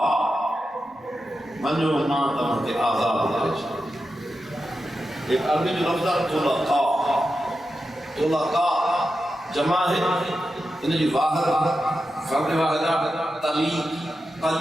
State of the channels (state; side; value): normal; both; correlation 0.90